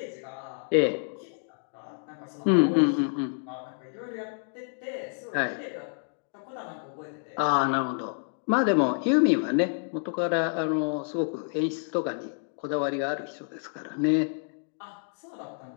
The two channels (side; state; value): right; silent; digital silence